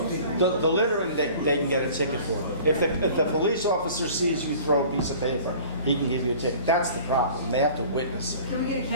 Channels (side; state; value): both; inverted; correlation -0.46